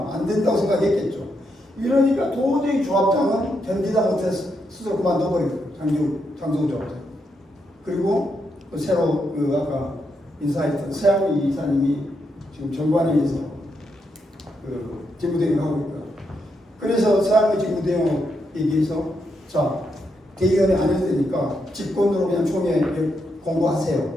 안 된다고 생각했겠죠. 이러니까 도저히 조합장은 견디다 못해서 스스로 그만둬버리고 장성우 조합장. 그리고 그 새로 그 아까 인사했던 서양미 이사님이 지금 정관위에서 그 직무대행을 하고 있다. 그래서 서양미 직무대행 얘기해서 자 대의원에 안 해도 되니까 직권으로 그냥 총회에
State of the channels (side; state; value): both; normal; correlation 0.81